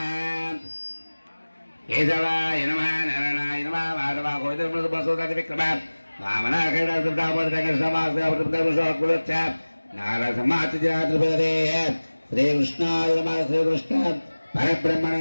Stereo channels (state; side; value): inverted; both; correlation -1.00